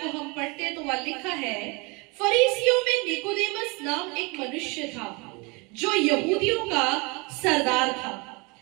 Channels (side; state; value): left; quieter; 28.3 dB